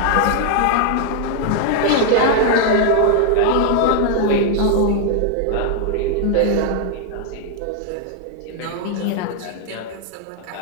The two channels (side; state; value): both; different; correlation 0.00